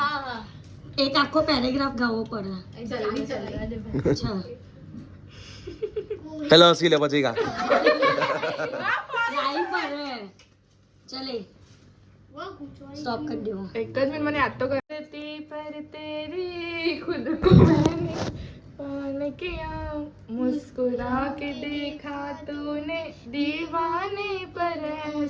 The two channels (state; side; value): identical; both; correlation 1.00